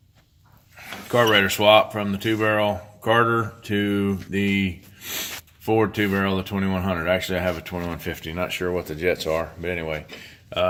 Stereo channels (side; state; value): both; identical; correlation 1.00